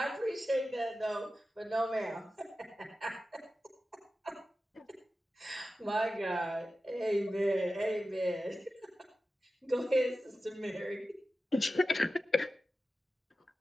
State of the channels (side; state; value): both; normal; correlation 0.93